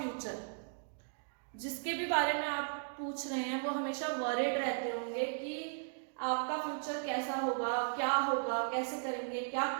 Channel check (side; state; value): left; silent; digital silence